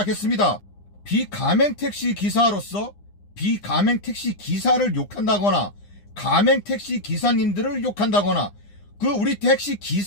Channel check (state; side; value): late; right; 9.9 ms